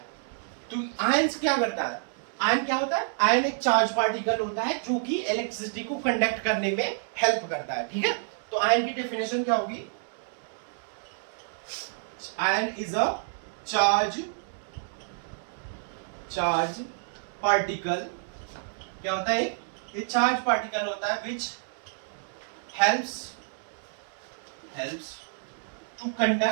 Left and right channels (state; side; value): silent; left; digital silence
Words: तो आयंस क्या करता है, आयन क्या होता है, आयन एक चार्ज पार्टिकल होता है जो कि इलेक्ट्रिसिटी को कंडक्ट करने में हेल्प करता है, ठीक है। तो आयन की डेफिनेशन क्या होगी, ion is a charge particle, क्या होता है, ये चार्ज पार्टिकल होता है विच helps to